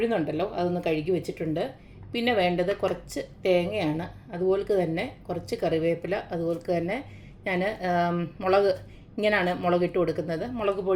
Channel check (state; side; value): identical; both; correlation 1.00